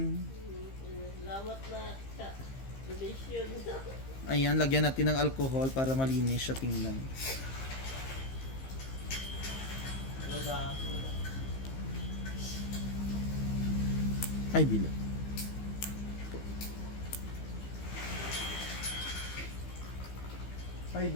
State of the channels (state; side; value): late; right; 15 ms